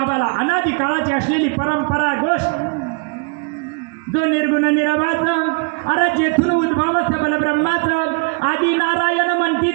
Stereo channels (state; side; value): quieter; left; 34.9 dB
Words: अनादी काळाची असलेली परंपरा गोष्ट, जो निर्गुण निराभाचं, अरे जेथून उद्भव सबल ब्रह्माचं, आदी नारायण म्हणती